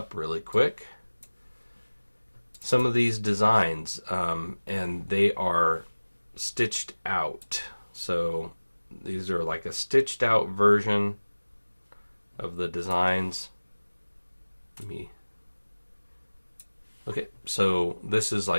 really quick, some of these designs, and they are stitched out. So these are like a stitched out version of the designs. Okay, so this is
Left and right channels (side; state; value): both; inverted; correlation -1.00